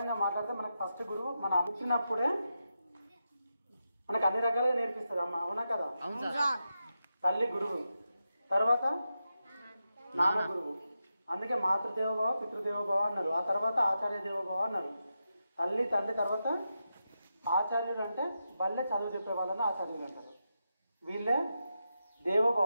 మాట్లాడితే మనకు ఫస్ట్ గురువు మనం అనుకున్నప్పుడే మనకు అన్ని రకాలుగా నేర్పిస్తుంది అమ్మ, అవునా కదా? తల్లి గురువు, తర్వాత నాన్న గురువు. అందుకే మాతృదేవోభవ పితృదేవోభవ అన్నారు. ఆ తర్వాత ఆచార్య దేవోభవ అన్నారు. తల్లి తండ్రి తర్వాత ఆచార్యులు అంటే బల్లె చదువు చెప్పే వాళ్ళని ఆచార్యులు అంటారు. వీళ్ళే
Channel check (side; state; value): both; inverted; correlation -0.88